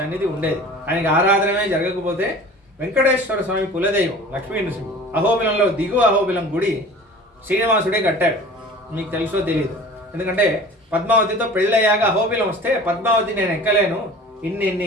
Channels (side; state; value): both; normal; correlation 0.42